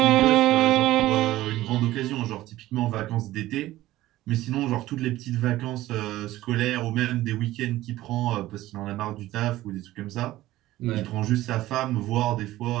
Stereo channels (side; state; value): left; quieter; 15.9 dB